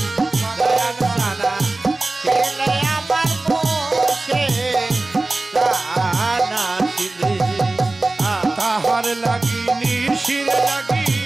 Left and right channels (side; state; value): left; quieter; 3.1 dB